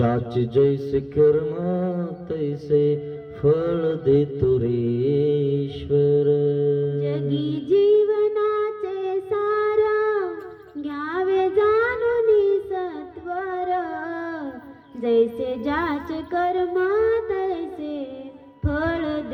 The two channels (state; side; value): identical; both; correlation 1.00